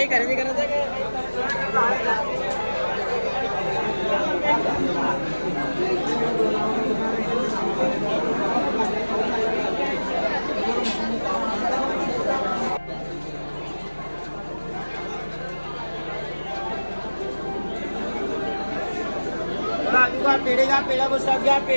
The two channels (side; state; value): both; inverted; correlation -1.00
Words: खरेदी करायचं का? पेढे घ्या, पेढा बसा घ्या,